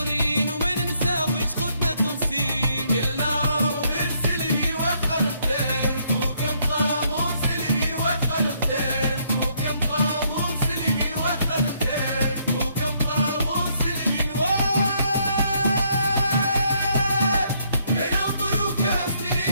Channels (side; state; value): both; inverted; correlation -0.70